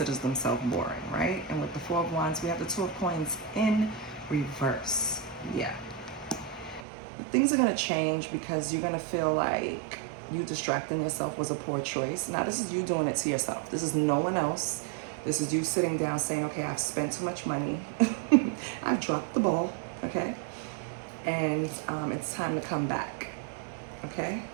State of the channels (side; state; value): left; drops out; at 6.9 s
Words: themselves boring, right? And with the Four of Wands, we have the Two of Coins in reverse. Yeah. Things are going to change because you're going to feel like you distracting yourself was a poor choice. Now, this is you doing it to yourself. This is no one else. This is you sitting down saying, okay, I've spent too much money. I've dropped the ball, okay? And it's time to come back, okay?